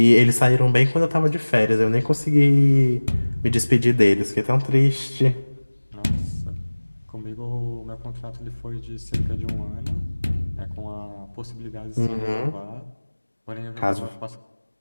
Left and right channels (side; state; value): both; inverted; correlation -1.00